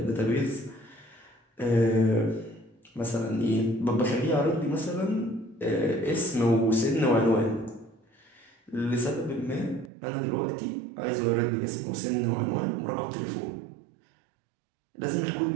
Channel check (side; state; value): left; drops out; at 9.9 s